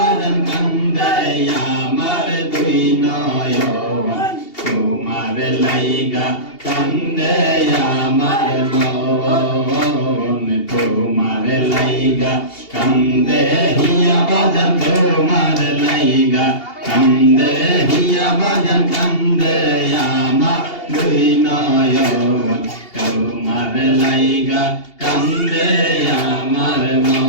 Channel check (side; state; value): right; late; 2.8 ms